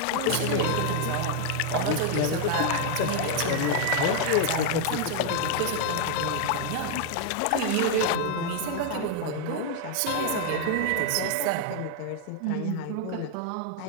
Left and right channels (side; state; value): both; different; correlation 0.00